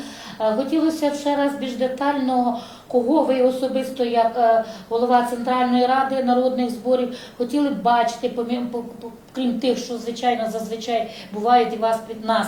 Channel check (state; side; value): identical; both; correlation 1.00